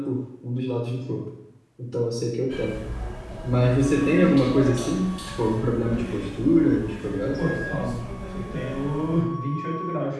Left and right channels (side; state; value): both; identical; correlation 1.00